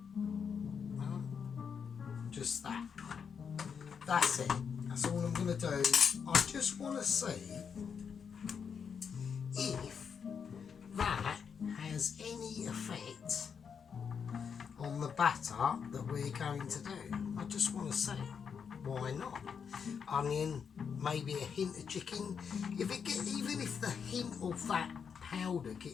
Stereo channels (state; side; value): quieter; right; 6.7 dB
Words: Just that. That's it. That's all I'm going to do. I just want to see if that has any effect on the batter that we're going to do. I just want to see. Why not? Onion, maybe a hint of chicken. Even if the hint of that powder